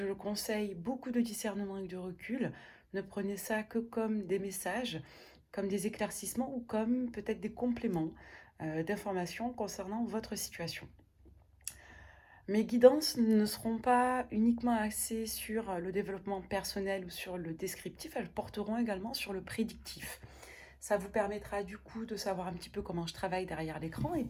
le conseille, beaucoup de discernement et de recul, ne prenez ça que comme des messages, comme des éclaircissements ou comme peut-être des compléments d'informations concernant votre situation. Mes guidances ne seront pas uniquement axées sur le développement personnel ou sur le descriptif, elles porteront également sur le prédictif. Ça vous permettra du coup de savoir un petit peu comment je travaille derrière l'écran et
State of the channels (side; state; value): both; identical; correlation 1.00